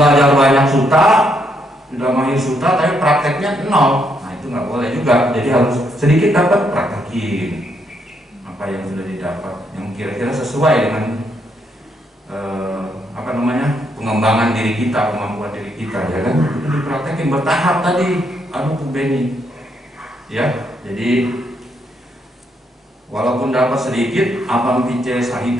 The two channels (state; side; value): normal; both; correlation 0.75